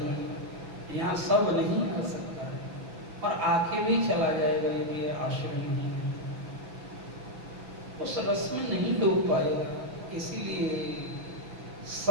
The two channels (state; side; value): late; left; 6.0 ms